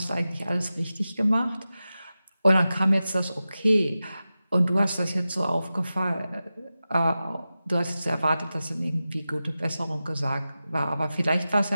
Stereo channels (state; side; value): inverted; both; correlation -0.94